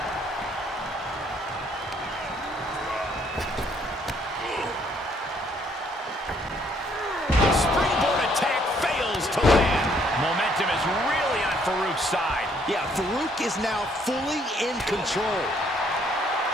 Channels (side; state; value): both; normal; correlation 0.66